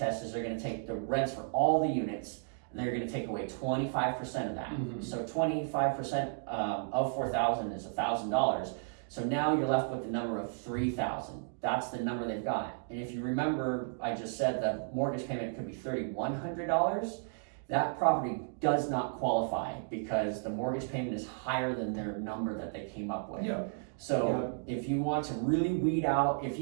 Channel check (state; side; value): silent; left; digital silence